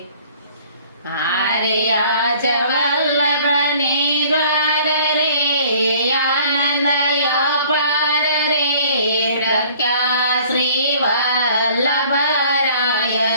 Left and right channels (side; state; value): both; inverted; correlation -0.53